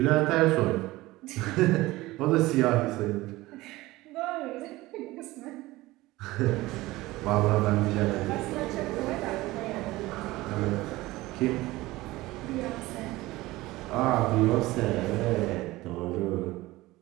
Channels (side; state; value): left; quieter; 18.9 dB